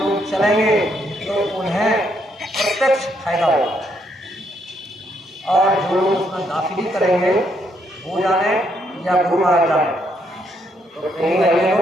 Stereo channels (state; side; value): normal; both; correlation 0.74